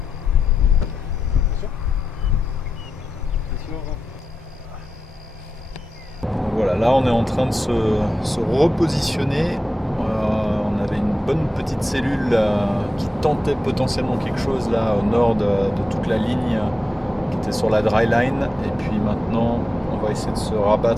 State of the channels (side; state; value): both; normal; correlation 0.90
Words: Voilà, là on est en train de se repositionner. On avait une bonne petite cellule qui tentait potentiellement quelque chose là au nord de toute la ligne qui était sur la dry line. Et puis maintenant on va essayer de se